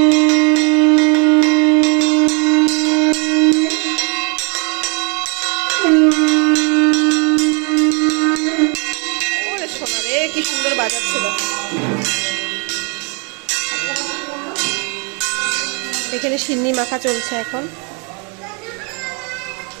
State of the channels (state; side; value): quieter; left; 35.3 dB